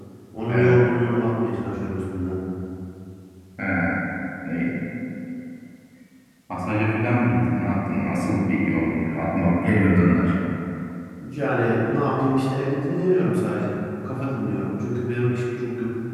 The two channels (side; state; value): both; identical; correlation 1.00